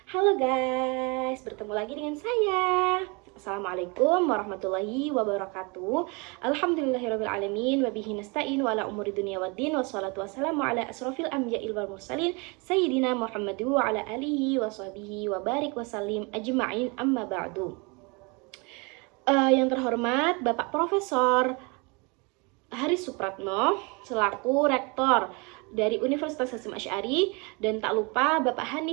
Halo guys, bertemu lagi dengan saya. Assalamualaikum warahmatullahi wabarakatuh. Alhamdulillahirrabbilalamin. Wabihi nasta'in wa ala umuri dunia waddin. Wassalatu wassalamu ala asrafil anbiya'i wal mursalin Sayyidina Muhammadu wa ala alihi wa sahbihi wa barik wa salim ajma'in amma ba'du. Yang terhormat Bapak Profesor Haris Supratno selaku Rektor dari Universitas Hasyim Asy'ari, dan tak lupa Bapak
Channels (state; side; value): quieter; left; 29.6 dB